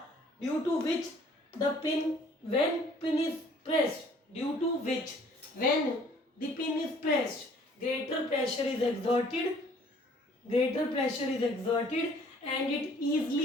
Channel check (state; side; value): normal; both; correlation 0.57